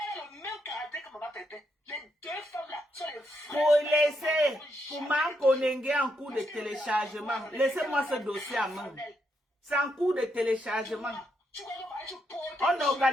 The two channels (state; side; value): normal; both; correlation 0.80